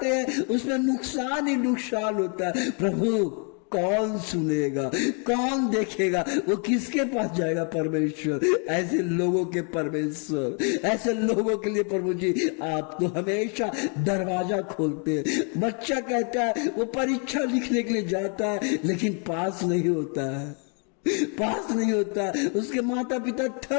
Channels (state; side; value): quieter; right; 38.8 dB